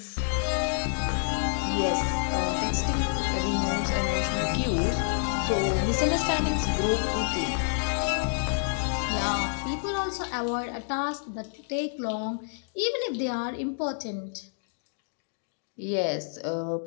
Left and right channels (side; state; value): right; silent; digital silence